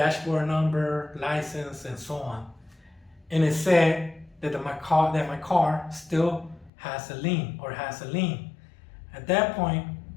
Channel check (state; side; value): drops out; right; at 6.7 s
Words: number, license, and so on. And it said that my car still has a lien, or has a lien. At that point,